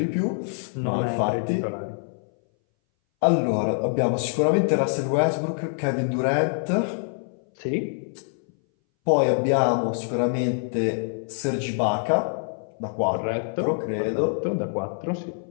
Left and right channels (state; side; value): silent; right; 60 dB below the other